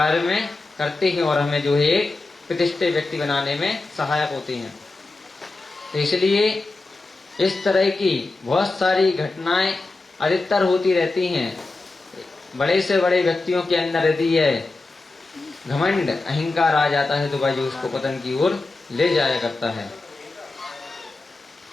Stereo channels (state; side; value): quieter; right; 3.3 dB